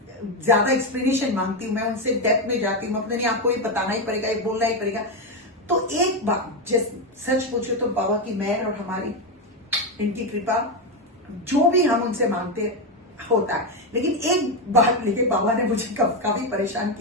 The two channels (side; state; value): both; normal; correlation 0.09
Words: ज्यादा एक्सप्लेनेशन मांगती हूँ, मैं उनसे डेप्थ में जाती हूँ, अपने नहीं आपको ये बताना ही पड़ेगा, ये बोलना ही पड़ेगा। तो एक बात सच पूछो तो बाबा की मेहर और हमारी इनकी कृपा, जो भी हम उनसे मांगते होता है। लेकिन एक बात लेके बाबा ने मुझे काफी परेशान